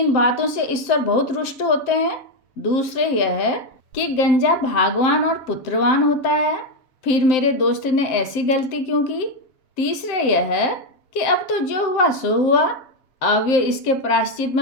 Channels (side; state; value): right; late; 7.7 ms